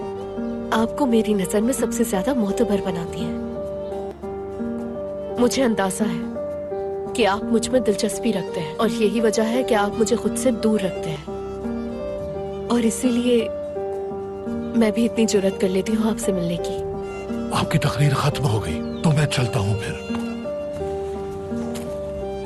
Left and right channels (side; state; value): both; identical; correlation 1.00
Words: आपको मेरी नजर में सबसे ज्यादा मोतबर बनाती है। मुझे अंदाजा है कि आप मुझ में दिलचस्पी रखते हैं, और यही वजह है कि आप मुझे खुद से दूर रखते हैं। और इसीलिए मैं भी इतनी जुर्रत कर लेती हूँ आपसे मिलने की। आपकी तकरीर खत्म हो गई तो मैं चलता हूँ फिर।